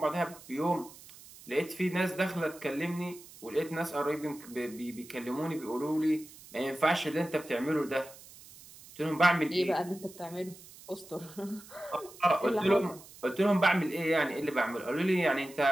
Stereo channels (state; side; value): noise; right; hiss, 20 dB below the sound